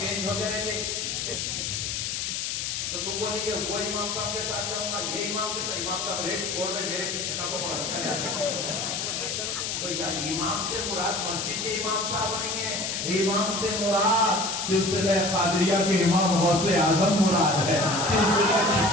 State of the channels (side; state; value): left; noise; hiss, 2 dB below the sound